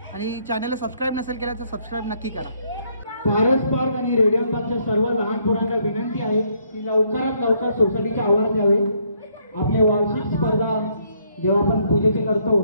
आणि चॅनलला सबस्क्राईब नसेल केला तर सबस्क्राईब नक्की करा। पारस पार्क आणि रेडियम पार्कच्या सर्व लहान पोरांना विनंती आहे की लवकरात लवकर सोसायटीच्या आवारात यावे। आपले वार्षिक स्पर्धा जेव्हा आपण पूजेचे करतो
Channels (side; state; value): both; inverted; correlation -0.70